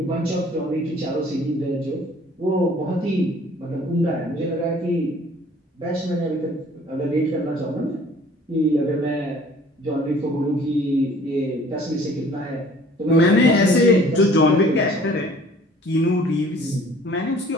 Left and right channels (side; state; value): both; normal; correlation 0.53